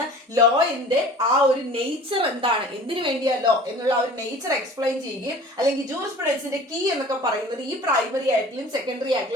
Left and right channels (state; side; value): normal; both; correlation 0.44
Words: ലോയിന്റെ ആ ഒരു നേച്ചർ എന്താണ്, എന്തിനു വേണ്ടിയാ ലോ എന്നുള്ള ഒരു നേച്ചർ എക്സ്പ്ലെയിൻ ചെയ്യുകയും, അല്ലെങ്കിൽ ജൂറിസ്പ്രുഡൻസിന്റെ കീ എന്നൊക്കെ പറയുന്നത് ഈ പ്രൈമറി ആയിട്ടുള്ള സെക്കൻഡറി